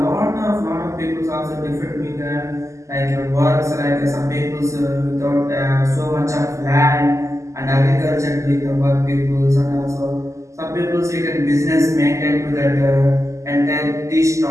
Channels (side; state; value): left; late; 0.15 ms